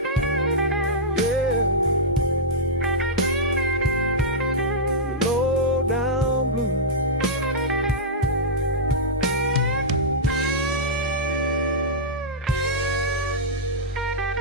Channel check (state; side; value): normal; both; correlation -0.10